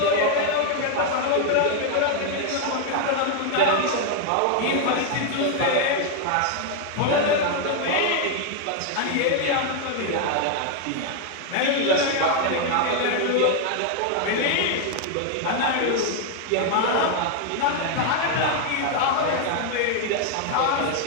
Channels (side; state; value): both; different; correlation 0.00